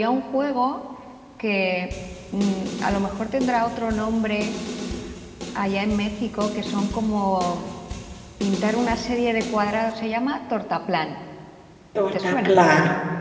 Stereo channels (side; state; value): both; identical; correlation 1.00